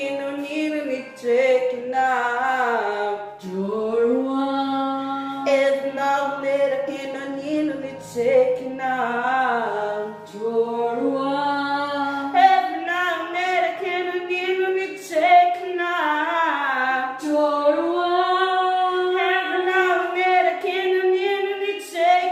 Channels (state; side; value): identical; both; correlation 1.00